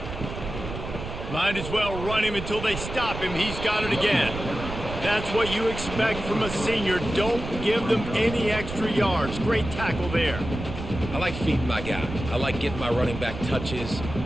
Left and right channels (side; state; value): right; noise; rumble, 8 dB below the sound